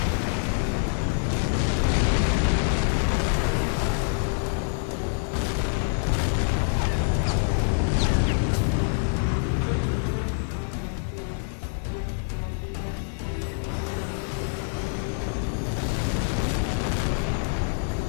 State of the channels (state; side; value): silent; right; digital silence